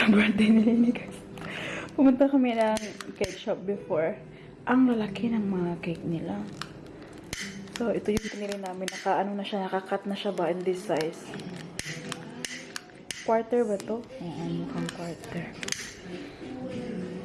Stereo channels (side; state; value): both; identical; correlation 1.00